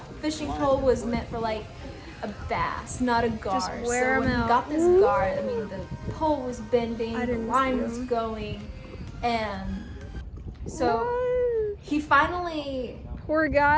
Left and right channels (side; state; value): both; identical; correlation 1.00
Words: fishing pole was meant for like a bass, not a gar. Just wear so when him he out. got this gar, I mean, the pole was bending, the line was going, and so he finally poor